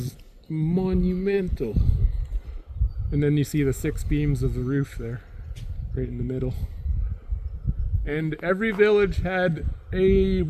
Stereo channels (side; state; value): both; identical; correlation 1.00